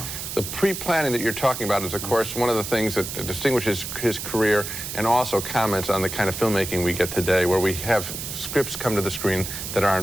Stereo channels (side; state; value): right; noise; hiss, 6 dB below the sound